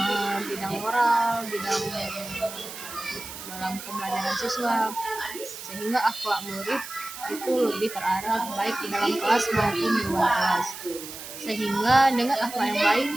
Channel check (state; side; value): noise; right; hiss, 11 dB below the sound